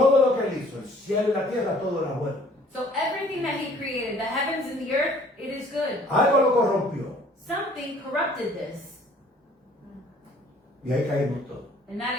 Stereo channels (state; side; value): normal; both; correlation 0.56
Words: lo que él hizo, el cielo y la tierra, todo era bueno. So everything that He created, the heavens and the earth, it is good. Algo lo corrompió Something corrupted this, y ahí caímos todos. and